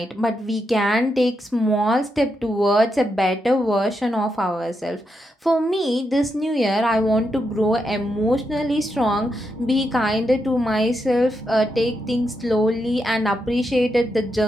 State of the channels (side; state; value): both; normal; correlation 0.83